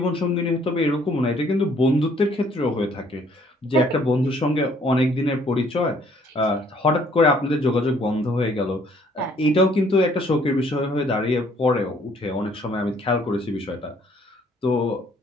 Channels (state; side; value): normal; both; correlation 0.62